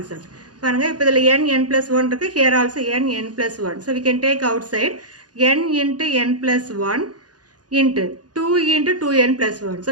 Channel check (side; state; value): left; late; 0.69 ms